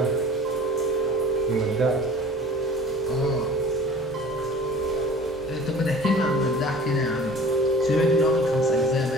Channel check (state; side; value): normal; both; correlation 0.43